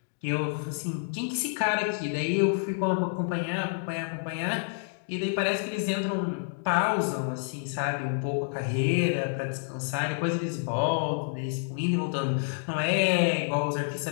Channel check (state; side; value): silent; right; digital silence